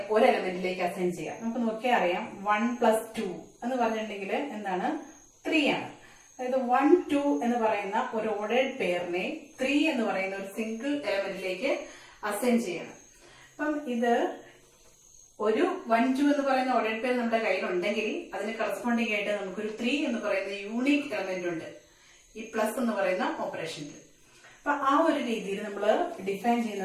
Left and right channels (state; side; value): identical; both; correlation 1.00